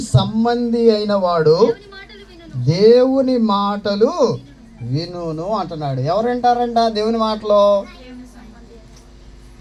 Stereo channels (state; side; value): identical; both; correlation 1.00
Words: సంబంధి అయిన వాడు దేవుని మాటలు వినును అంటున్నాడు. ఎవరు వింటారంట దేవుని మాటలు?